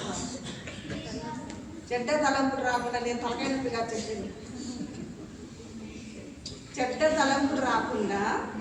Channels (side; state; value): both; identical; correlation 1.00